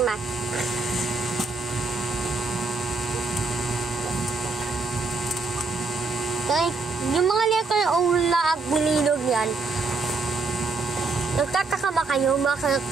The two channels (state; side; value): quieter; left; 3.9 dB